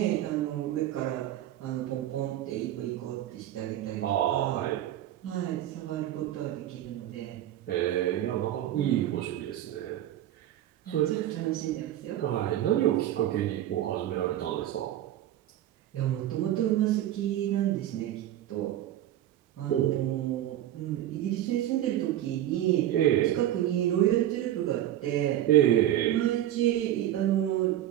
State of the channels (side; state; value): left; quieter; 12.7 dB